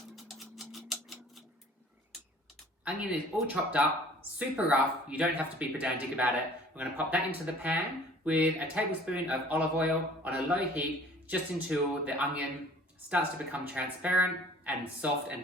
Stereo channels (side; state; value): both; normal; correlation 0.51